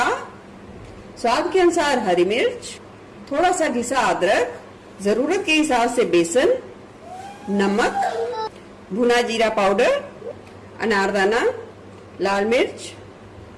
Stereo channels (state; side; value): identical; both; correlation 1.00